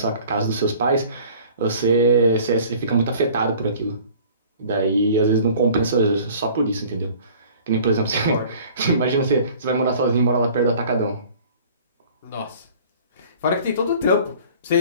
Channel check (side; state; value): both; inverted; correlation -0.49